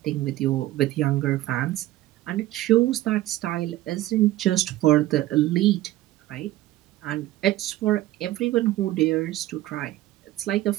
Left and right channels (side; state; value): left; quieter; 15.6 dB